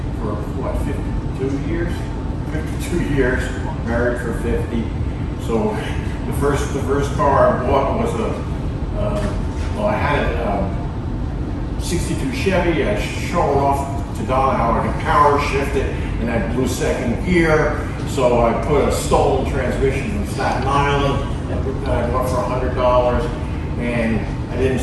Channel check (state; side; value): identical; both; correlation 1.00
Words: for what, 52 years? 52 years, married for 50. So the first car I bought was well, I had a 62 Chevy. I showed off to Don how I could power shift it, and I blew second gear. So I put a stolen transmission from Staten Island that I bought for $100, and I didn't